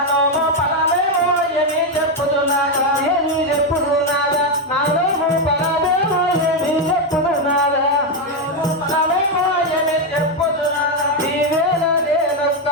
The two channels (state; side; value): normal; both; correlation 0.05